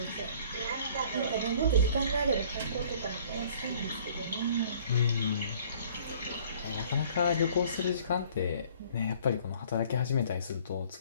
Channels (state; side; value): inverted; both; correlation -0.55